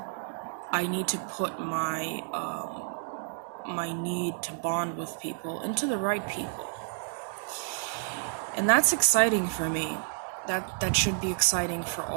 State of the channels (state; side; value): silent; left; digital silence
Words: I need to put my need to bond with people into the right people. And that's exciting for me. That should be exciting for